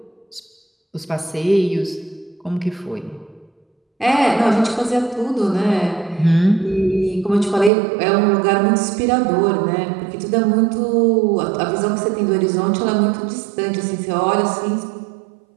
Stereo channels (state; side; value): drops out; left; at 7.7 s